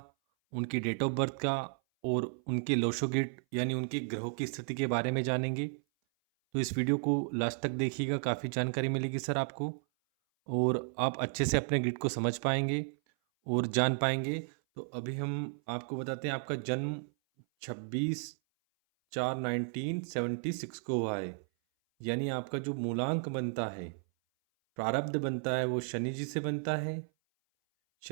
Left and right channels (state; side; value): silent; left; 55 dB below the other